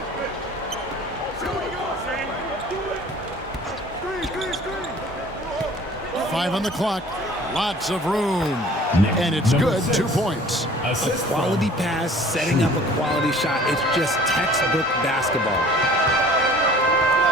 Screen. 5 on the clock. Lots of room. And it's good. 2 points. A quality pass, setting up a quality shot. It's just textbook basketball.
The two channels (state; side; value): normal; both; correlation 0.49